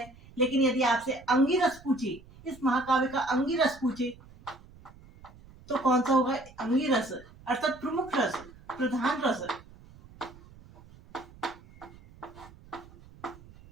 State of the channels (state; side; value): noise; right; rumble, 22 dB below the sound